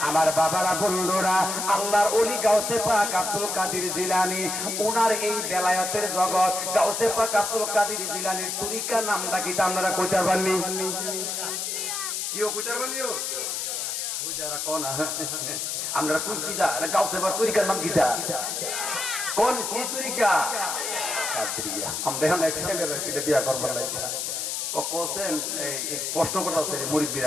আমার বাবারা বন্ধুরা, আল্লাহর ওলি গাউসে পাক আব্দুল কাদের জিলানী, ওনার এই বেলায়েতের জগৎ গাউসে পাক আব্দুল কাদের জিলানীর তরিকা নামটা কি আপনারা কইতে পারবেননি? কিও কইতে পারবেননি? ওই যারা কোন আমরা কোন কিদা গাউসে পাক তরিকার নাম কিদা? কোন কি তরিকা? কাদরিয়া। আমরা এখন এক্সেলের ছিল বিয়া করবার লাগি কোসেন এই প্রশ্ন করতেছে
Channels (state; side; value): noise; left; hiss, 2 dB below the sound